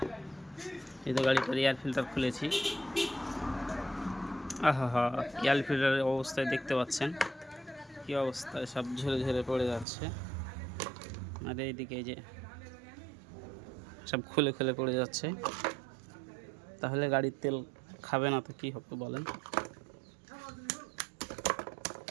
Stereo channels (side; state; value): left; drops out; at 9.9 s